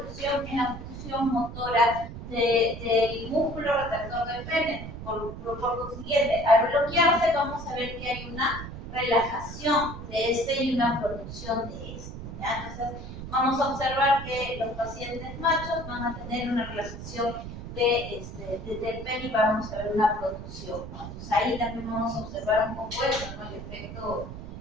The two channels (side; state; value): right; noise; rumble, 10 dB below the sound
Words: en la función motora del músculo retractor del pene. Por consiguiente, al bloquearse vamos a ver que hay una relajación de este y una producción de este, ¿ya? Entonces, vamos a observar que los pacientes machos van a tener una relajación del pene y vamos a ver una producción, ¿no? Entonces ahí también vamos a observar un poco eso, ¿no? El efecto